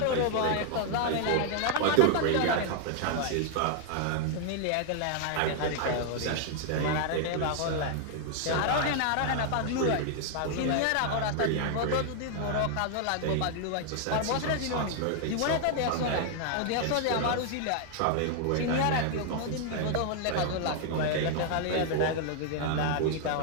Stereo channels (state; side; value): different; both; correlation 0.00